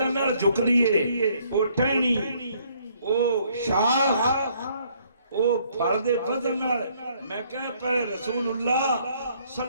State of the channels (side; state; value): both; inverted; correlation -0.65